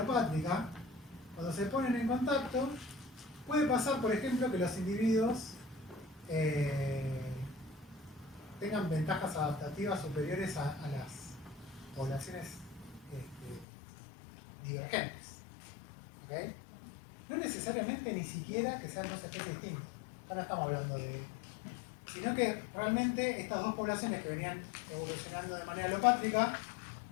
cuando se ponen en contacto, puede pasar, por ejemplo, que los individuos tengan ventajas adaptativas superiores a las poblaciones divergentes. ¿Okay? No necesariamente ni siquiera que sean dos especies distintas. Ahora estamos hablando de... Sino que realmente estas dos poblaciones que venían evolucionando de manera alopátrica,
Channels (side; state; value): right; drops out; at 13.7 s